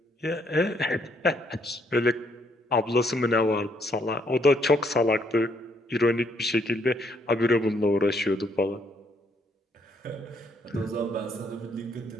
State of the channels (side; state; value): both; normal; correlation 0.70